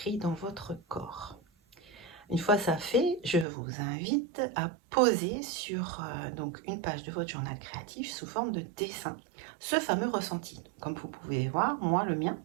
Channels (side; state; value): left; drops out; at 3.5 s